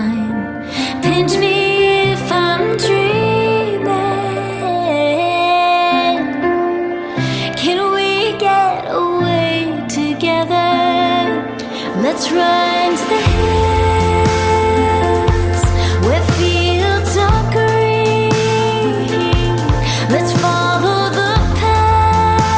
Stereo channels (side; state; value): both; identical; correlation 1.00